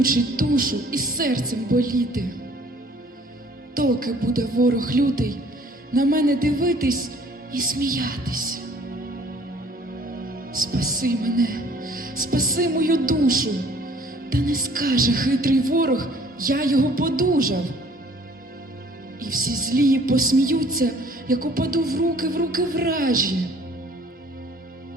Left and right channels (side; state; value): both; normal; correlation 0.56